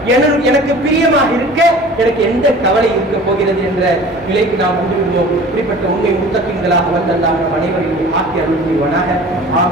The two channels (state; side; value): normal; both; correlation 0.43